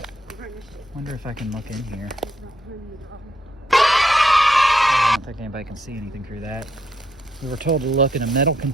wonder if I can look in here. I don't think anybody can see anything through that. We were told to look in a metal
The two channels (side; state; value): both; normal; correlation 0.76